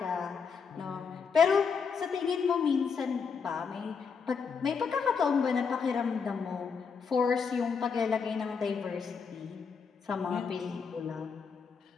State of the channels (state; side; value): quieter; right; 5.8 dB